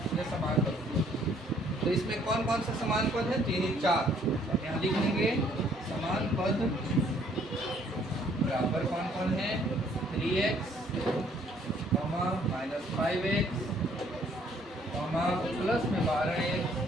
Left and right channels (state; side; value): normal; both; correlation 0.63